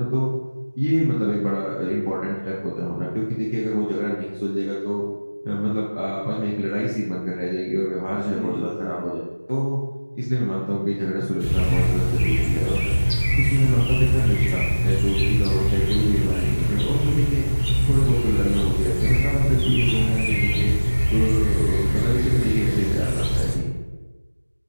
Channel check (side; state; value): both; inverted; correlation -1.00